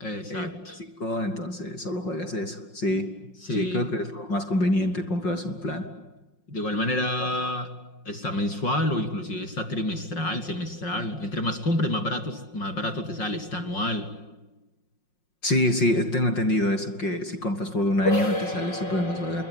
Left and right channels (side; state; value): right; late; 5.5 ms